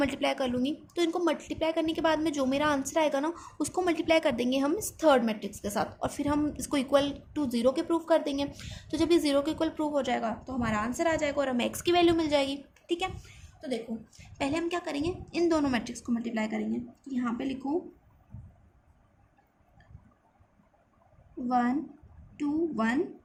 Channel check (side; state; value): both; identical; correlation 1.00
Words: कर लूँगी, तो इनको मल्टीप्लाई करने के बाद में जो मेरा आंसर आएगा ना उसको मल्टीप्लाई कर देंगे हम इस थर्ड मैट्रिक्स के साथ, और फिर हम इसको इक्वल टू 0 के प्रूव कर देंगे। तो जब ये 0 के इक्वल प्रूव हो जाएगा तो हमारा आंसर आ जाएगा और हमें x की वैल्यू मिल जाएगी। ठीक है, तो देखो पहले हम क्या करेंगे, इन दोनों मैट्रिक्स को मल्टीप्लाई करेंगे। यहाँ पे लिखो 1 2 1